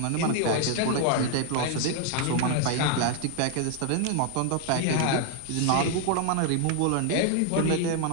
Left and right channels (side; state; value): both; different; correlation 0.00